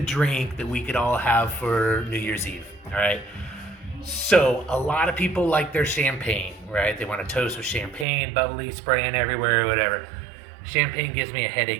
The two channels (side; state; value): left; drops out; at 8.1 s